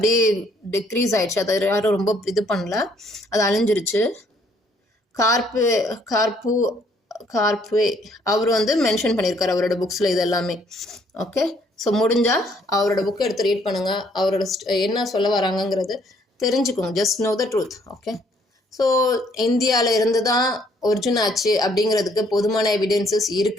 டிக்ரீஸ் ஆயிடுச்சு. அதை யாரும் ரொம்ப இது பண்ணல, அது அழிஞ்சிருச்சு. கார்ப்வே அவர் வந்து மென்ஷன் பண்ணியிருக்காரு அவரோட புக்ஸில் இது எல்லாமே. ஓகே. ஸோ முடிஞ்சால் அவரோட புக்கை எடுத்து ரீட் பண்ணுங்கள். அவரோட என்ன சொல்ல வராங்கங்கிறது தெரிஞ்சுக்கோங்க. Just no the truth. Okay. So இந்தியாவில் இருந்து தான் ஒரிஜின் ஆச்சு அப்படிங்கிறதுக்கு போதுமான எவிடென்சஸ்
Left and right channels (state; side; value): normal; both; correlation 0.66